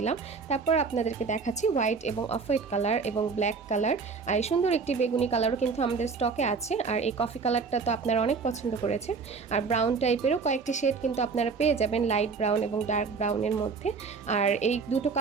তারপর আপনাদেরকে দেখাচ্ছি হোয়াইট এবং অফ হোয়াইট কালার এবং ব্ল্যাক কালার। আর এই সুন্দর একটি বেগুনি কালারও কিন্তু আমাদের স্টকে আছে। আর এই কফি কালারটা তো আপনারা অনেক পছন্দ করেছেন। আর ব্রাউন টাইপেরও কয়েকটি শেড কিন্তু আপনারা পেয়ে যাবেন, লাইট ব্রাউন এবং ডার্ক ব্রাউনের মধ্যে। আর এই দুটো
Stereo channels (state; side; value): quieter; left; 5.0 dB